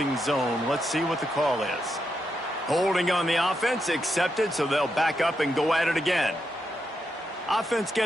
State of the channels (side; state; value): both; normal; correlation 0.83